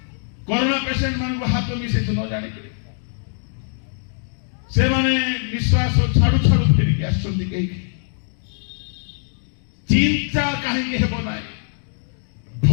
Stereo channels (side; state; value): right; silent; digital silence